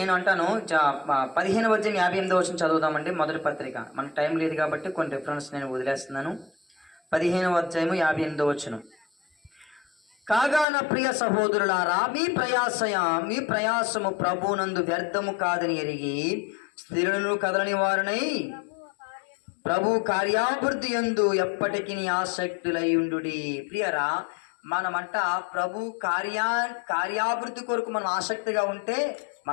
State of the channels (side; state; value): right; drops out; at 10.7 s